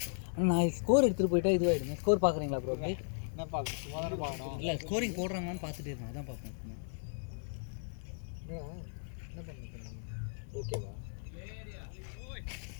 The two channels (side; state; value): right; silent; digital silence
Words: நான் ஸ்கோர் எடுத்துட்டு போயிட்டா இதுவாயிடுங்க. ஸ்கோர் பாக்குறீங்களா ப்ரோ? என்ன பார்க்கணும், சும்மா தானே பார்க்கணும். இல்லை ஸ்கோரிங் போடுறாங்கன்னு பார்த்துட்டு இருக்கேன், அதான் பார்ப்பேன். என்ன பண்ணிட்டு ஓகேவா?